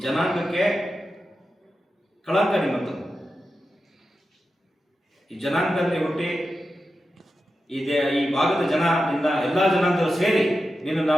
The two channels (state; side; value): normal; both; correlation 0.91